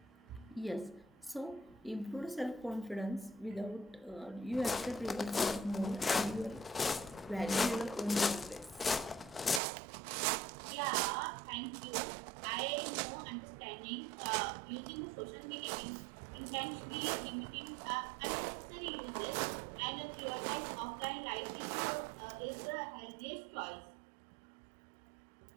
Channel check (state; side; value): drops out; left; at 9.6 s